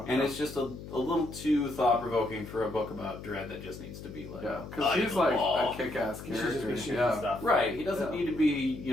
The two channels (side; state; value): left; noise; hum, 12 dB below the sound